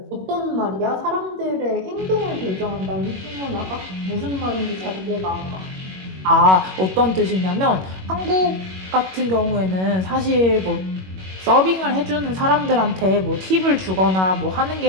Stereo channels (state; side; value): late; left; 21 ms